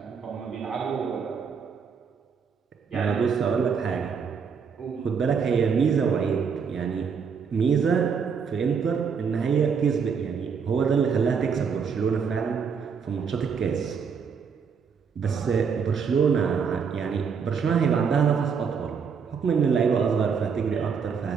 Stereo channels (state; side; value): quieter; left; 6.2 dB